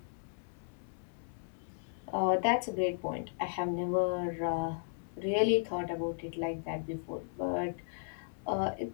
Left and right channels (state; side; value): silent; right; 54 dB below the other